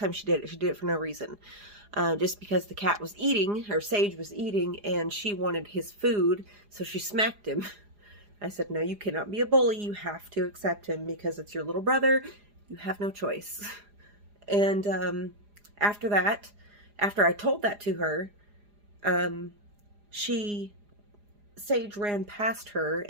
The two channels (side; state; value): left; late; 4.9 ms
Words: she did it for no reason. Just because the cat was eating, or Sage was eating, and she wanted his food, so she smacked him. I said, no, you cannot be a bully. You have to accept him because it's your little brother. You have no choice. And after that, after I told that to her, Sage ran past her,